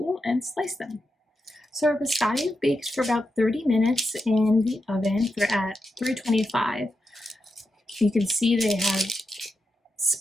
and slice them. So our biscotti bakes for about 30 minutes in the oven at 325. You can see they have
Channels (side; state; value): both; normal; correlation 0.87